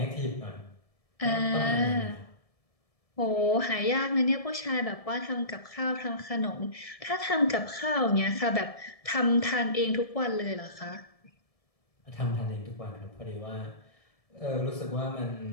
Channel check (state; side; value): late; right; 1.7 ms